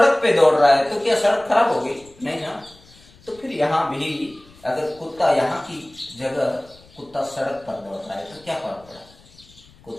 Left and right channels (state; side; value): noise; left; rumble, 26 dB below the sound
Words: पे दौड़ रहा है, तो क्या सड़क खराब हो गई? नहीं ना। तो फिर यहां भी अगर कुत्ता, यहाँ की जगह कुत्ता सड़क पर दौड़ रहा है, तो क्या फर्क पड़ा?